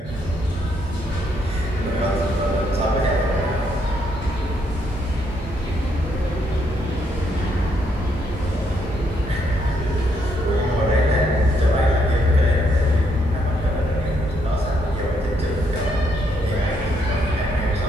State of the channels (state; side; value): normal; both; correlation 0.74